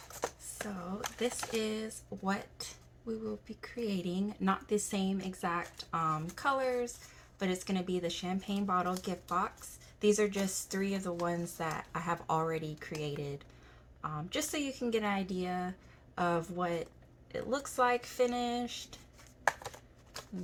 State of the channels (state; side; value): identical; both; correlation 1.00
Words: So this is what we will be creating. Not the same exact colors, but it's going to be the champagne bottle gift box. These are just 3 of the ones that I have already created. Just so you can get an idea of what it looks like finished.